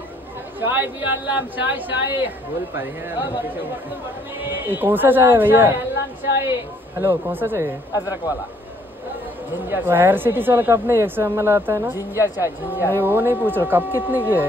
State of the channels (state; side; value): normal; both; correlation 0.64